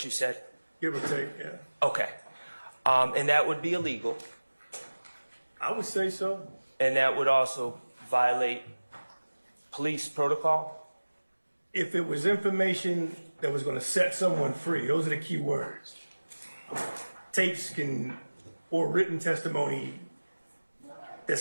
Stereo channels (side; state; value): both; inverted; correlation -1.00